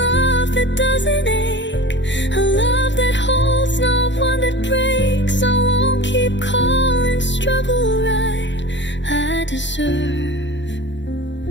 love that doesn't ache, a love that holds, not one that breaks. I won't keep calling struggle right. I deserve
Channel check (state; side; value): late; right; 0.53 ms